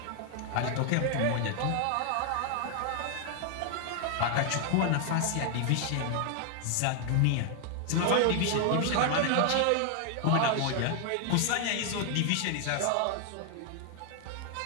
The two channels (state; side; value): different; both; correlation 0.00